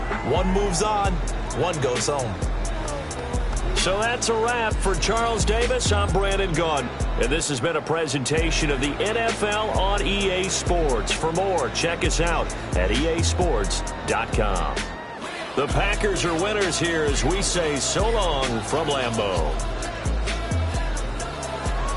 One moves on, one goes home. So that's a wrap for Charles Davis. I'm Brandon Gaudin, and this has been a presentation of the NFL on EA Sports. For more, check us out at easports.com. The Packers are winners here as we say so long from Lambeau.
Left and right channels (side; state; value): both; identical; correlation 1.00